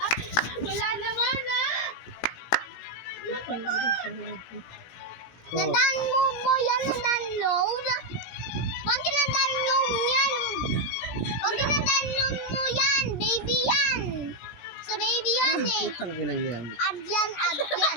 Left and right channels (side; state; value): right; late; 17 ms